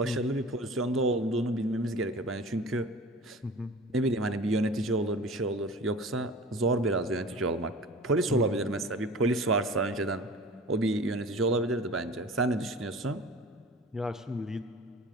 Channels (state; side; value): normal; both; correlation 0.40